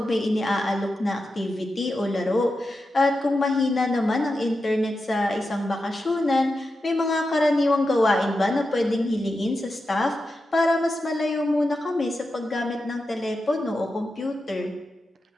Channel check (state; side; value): normal; both; correlation 0.90